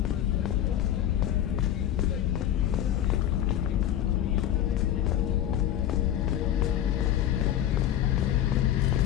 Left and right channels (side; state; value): right; quieter; 11.3 dB